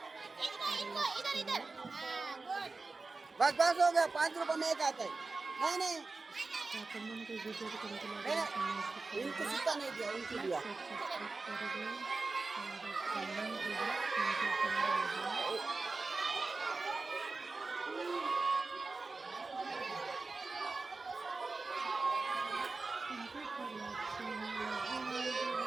बस बस हो गया 5 रुपए में एक आता है नहीं इनको सिक्का नहीं दिया उनको दिया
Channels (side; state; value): left; quieter; 3.8 dB